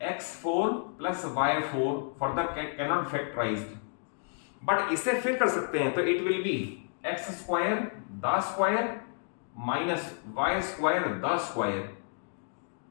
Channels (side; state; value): right; silent; 57 dB below the other